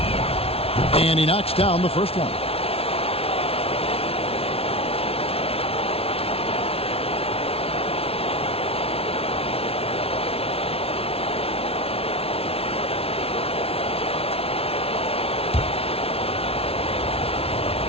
And he knocks down the first one.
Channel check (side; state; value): right; late; 0.28 ms